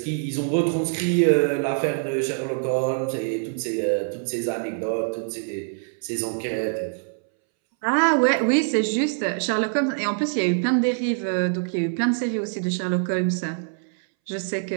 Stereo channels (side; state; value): left; silent; 62 dB below the other